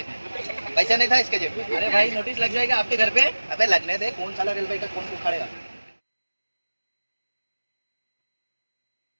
पैसा नहीं था इसके जेब में। अरे भाई नोटिस लग जाएगा आपके घर पे। अबे लगने दे, कौन साला रेलवे का कौन उखाड़ेगा।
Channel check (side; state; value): both; inverted; correlation -1.00